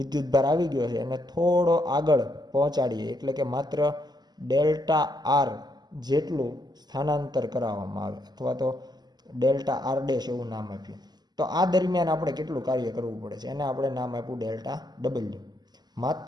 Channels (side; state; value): left; late; 0.20 ms